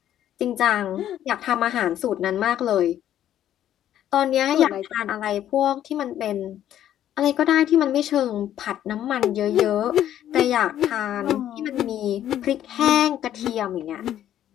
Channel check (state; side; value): quieter; right; 11.3 dB